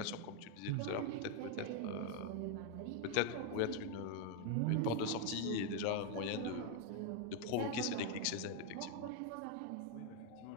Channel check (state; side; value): different; both; correlation 0.01